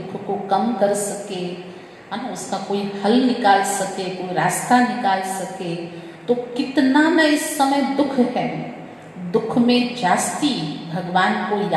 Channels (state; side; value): identical; both; correlation 1.00